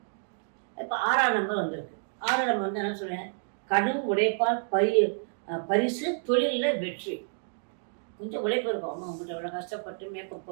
இப்போ 6ஆம் நம்பர் வந்திருக்கு. 6ஆம் நம்பர் என்ன சொல்றேன்? கடும் உழைப்பால் பரிசு, தொழிலில் வெற்றி. கொஞ்சம் உழைப்பு இருக்கும். அம்மா உங்கள்கிட்ட எவ்வளோ கஷ்டப்பட்டு மேக்கப்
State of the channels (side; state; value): left; silent; digital silence